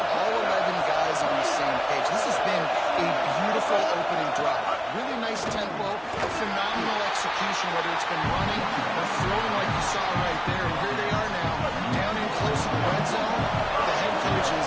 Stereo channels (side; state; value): both; identical; correlation 1.00